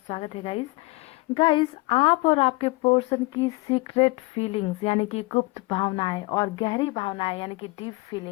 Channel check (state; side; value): quieter; right; 23.7 dB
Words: है गाइस। आप और आपके पर्सन की सीक्रेट फीलिंग्स यानी कि गुप्त भावनाएं और गहरी भावनाएं यानी कि डीप